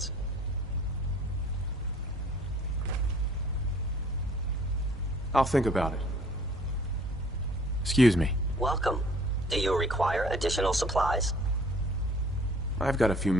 I'll think about it. Excuse me. Welcome. Do you require additional supplies? I've got a few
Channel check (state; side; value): normal; both; correlation 0.55